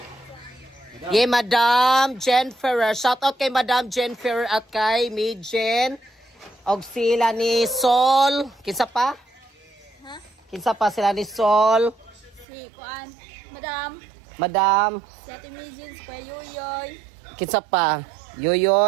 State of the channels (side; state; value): left; drops out; at 12.5 s